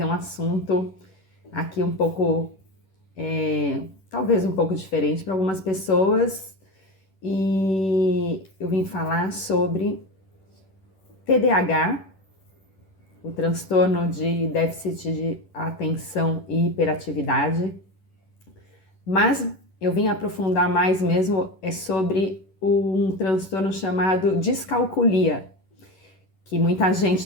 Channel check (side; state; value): right; late; 11 ms